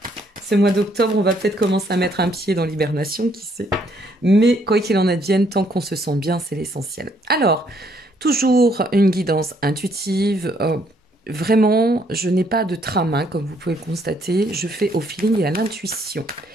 d'octobre. On va peut-être commencer à mettre un pied dans l'hibernation, qui sait. Mais quoi qu'il en advienne, tant qu'on se sent bien, c'est l'essentiel. Alors, toujours une guidance intuitive. Vraiment, je n'ai pas de trame, comme vous pouvez le constater. Je fais au feeling et à l'intuition.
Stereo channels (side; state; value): both; normal; correlation 0.68